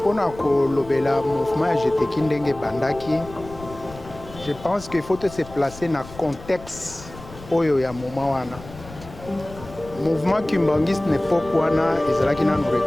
Pona ko lobela mouvement à GTK ndenge bandaki, je pense qu'il faut se placer dans le contexte oyo ya moment wana. Mouvement kimbangiste n'époque wana ezalaki na nous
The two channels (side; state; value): left; noise; rumble, 17 dB below the sound